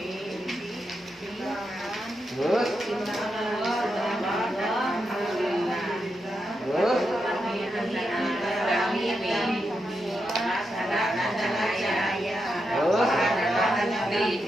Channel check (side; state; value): both; normal; correlation 0.85